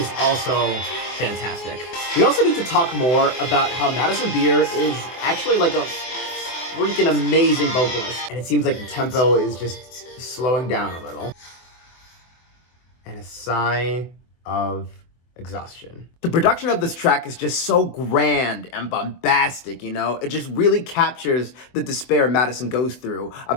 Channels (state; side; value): late; right; 24 ms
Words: also fantastic. We also need to talk more about how Madison Beer is actually like a freaking amazing vocalist. And it seems like the tempo is just slowing down a little. And a sigh of exhaustion. The production of this track is just so grand and bombastic, you know? It just really captures the despair Madison goes through